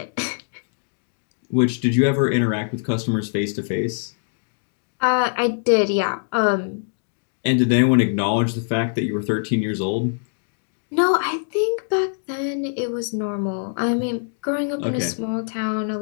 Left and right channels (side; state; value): right; silent; digital silence